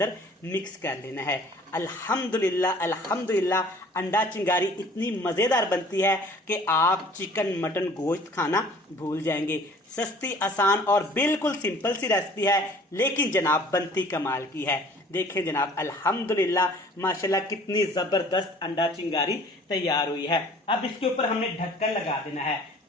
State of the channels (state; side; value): normal; both; correlation 0.51